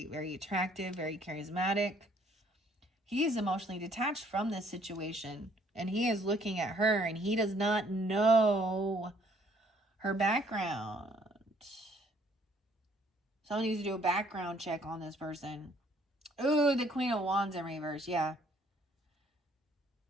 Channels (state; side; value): normal; both; correlation 0.63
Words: very attractive, very charismatic. He is emotionally detached from this situation. And he is looking at her, and he does not know her background. Someone needs to do a background check on this person. Ooh, the Queen of Wands in reverse, yeah.